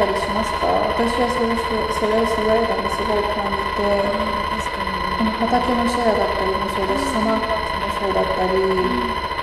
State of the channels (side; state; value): both; identical; correlation 1.00